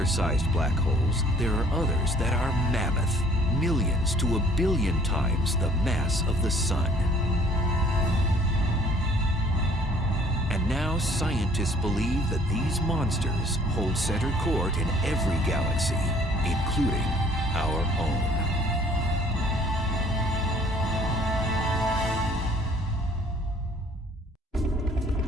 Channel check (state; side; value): normal; both; correlation 0.57